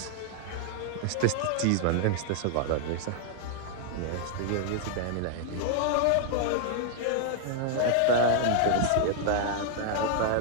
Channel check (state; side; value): different; both; correlation 0.00